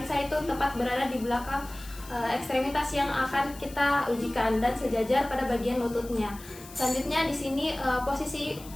itu tepat berada di belakang ekstremitas yang akan kita ujikan dan sejajar pada bagian lututnya. Selanjutnya di sini posisi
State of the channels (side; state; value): left; noise; hiss, 18 dB below the sound